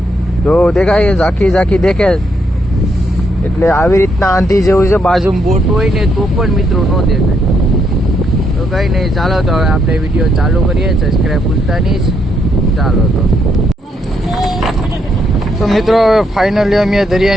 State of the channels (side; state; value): both; normal; correlation 0.76